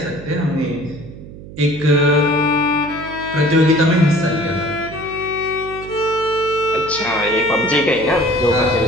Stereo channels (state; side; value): noise; right; hum, 15 dB below the sound